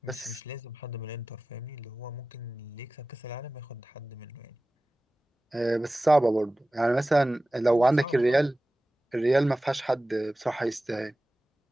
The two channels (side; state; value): both; normal; correlation 0.96